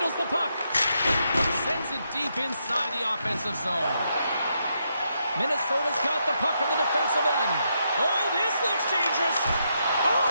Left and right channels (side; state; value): both; inverted; correlation -0.80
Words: the puck. Sends it deep inside the offensive zone. Minnesota's got the puck in the defensive end. Oh, this looks dangerous. Oh,